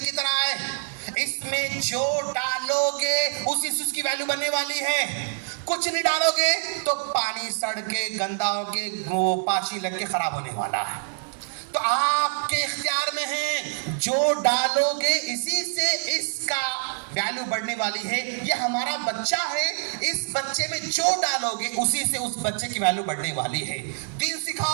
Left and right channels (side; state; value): left; silent; digital silence